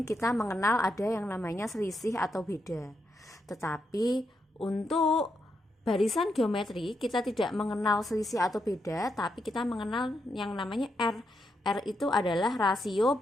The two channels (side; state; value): both; normal; correlation 0.82